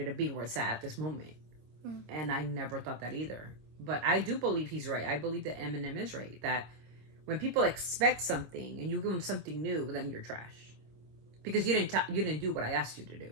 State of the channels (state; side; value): late; left; 26 ms